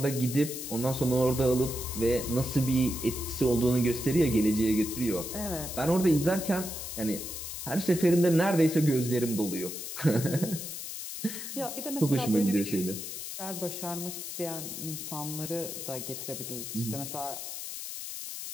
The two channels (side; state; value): left; noise; hiss, 7 dB below the sound